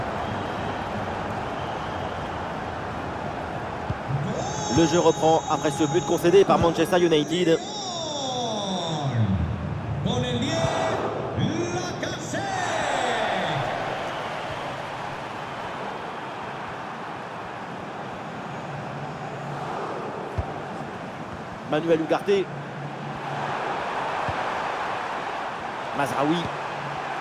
Le jeu reprend après ce but concédé par Manchester United. Manuel Ugarte. Mazraoui.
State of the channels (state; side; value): identical; both; correlation 1.00